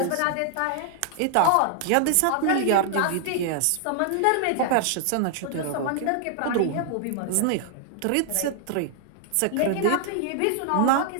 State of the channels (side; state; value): both; different; correlation -0.01